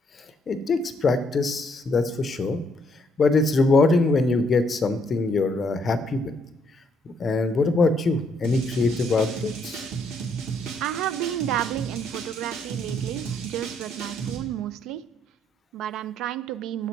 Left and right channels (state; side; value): normal; both; correlation 0.70